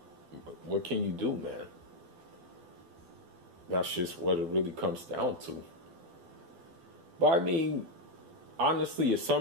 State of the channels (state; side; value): late; left; 12 ms